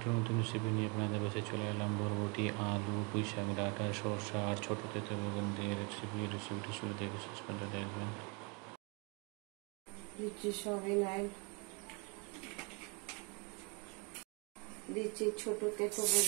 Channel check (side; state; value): left; quieter; 32.4 dB